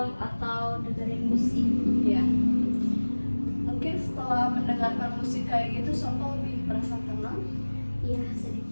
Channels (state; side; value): inverted; both; correlation -1.00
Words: atau dengerin musik. Iya. Mungkin setelah mendengarkan musik kayak gitu, Sopa lebih merasa tenang. Iya,